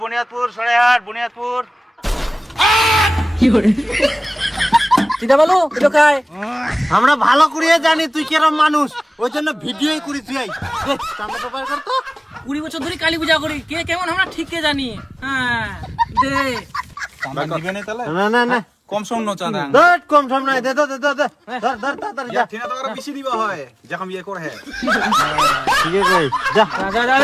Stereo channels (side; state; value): both; normal; correlation 0.98